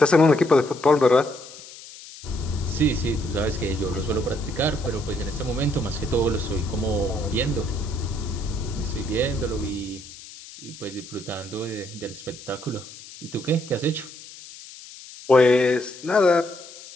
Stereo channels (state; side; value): noise; left; hiss, 17 dB below the sound